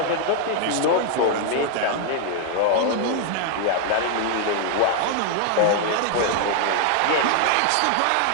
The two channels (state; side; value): different; both; correlation 0.00